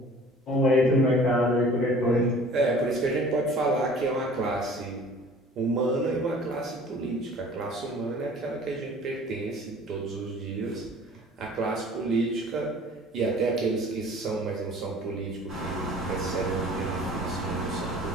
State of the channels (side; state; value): both; normal; correlation 0.48